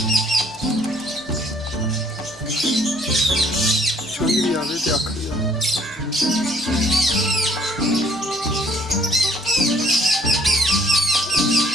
छोटी आगे से आखिरी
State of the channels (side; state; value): right; noise; hum, 28 dB below the sound